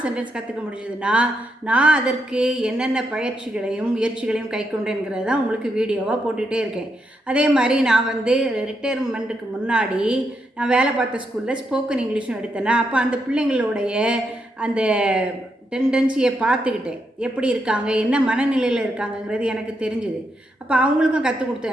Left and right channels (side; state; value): both; normal; correlation 0.81